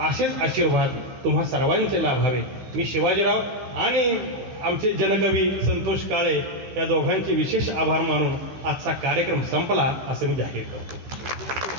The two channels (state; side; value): late; left; 16 ms